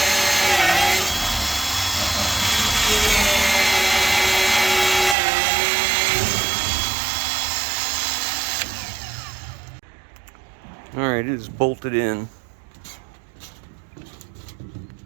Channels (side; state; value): left; drops out; at 5.2 s